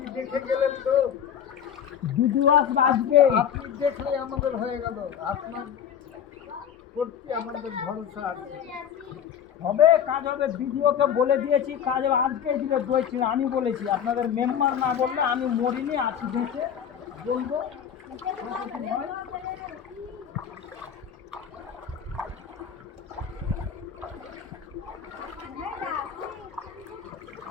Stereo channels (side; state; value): right; quieter; 8.5 dB